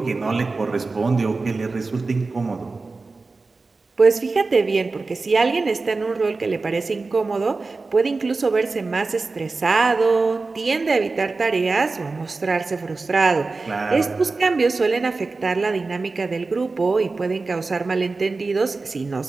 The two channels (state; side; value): quieter; left; 3.8 dB